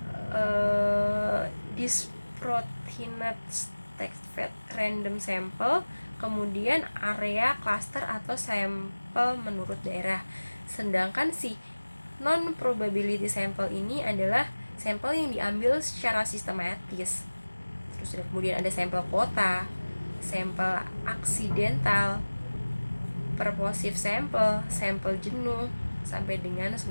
disproportionate stratified random sample, kemudian area cluster atau sampel menurut daerah. Sedangkan si non probability sample ini adalah sampel yang diambil secara sistematis. Terus kemudian ada sampel kota, sampel aksidental, purposive sample, sampel jenuh, sampai dengan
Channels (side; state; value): both; inverted; correlation -1.00